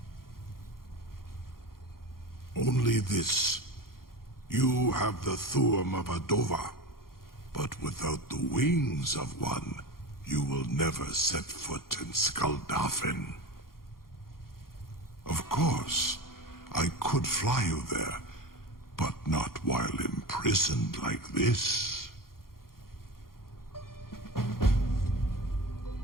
Only this. You have the Thuum of a Dova, but without the wings of one, you will never set foot in Skuldafn. Of course, I could fly you there, but not while imprisoned like this.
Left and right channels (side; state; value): right; late; 0.92 ms